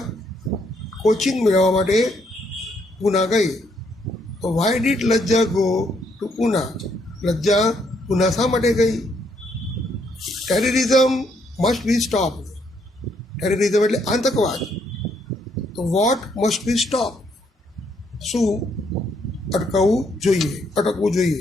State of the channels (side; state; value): both; normal; correlation 0.72